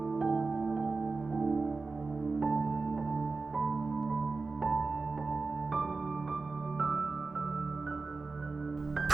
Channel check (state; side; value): quieter; left; 3.9 dB